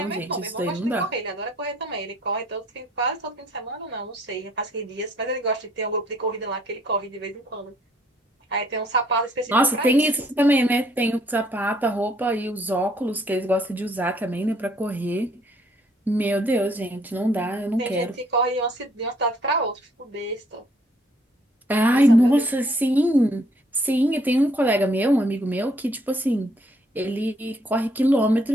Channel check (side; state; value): both; normal; correlation 0.64